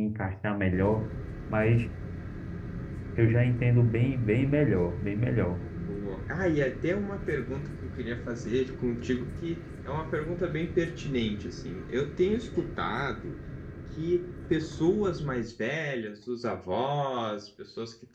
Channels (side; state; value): both; identical; correlation 1.00